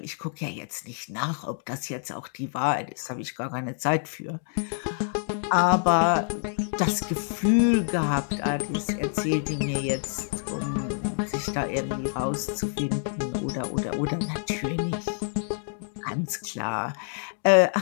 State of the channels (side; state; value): right; silent; digital silence